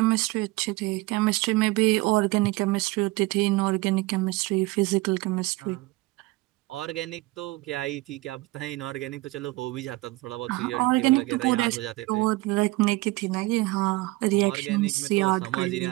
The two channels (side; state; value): left; quieter; 20.8 dB